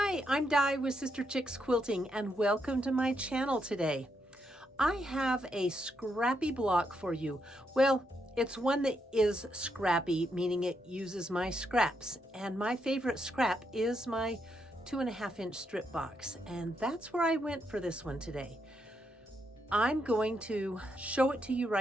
Hi, I'm Di with Sister Chicks Quilting and welcome to my channel today. I have a scrappy block for you. Well, it's one that is scrappy, meaning it uses my scraps. And my favorite scrap is my 2.5-inch strip box. And that's where I went for this one today. I'm going to show it to you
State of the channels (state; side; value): normal; both; correlation 0.80